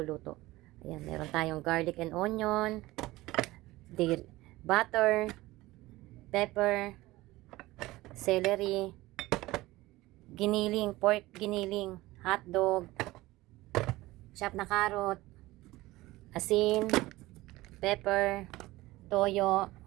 Ayan, meron tayong garlic and onion, butter, pepper, celery, giniling, pork giniling, hotdog, chopped na carrot, asin, pepper, toyo,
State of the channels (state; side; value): quieter; left; 18.7 dB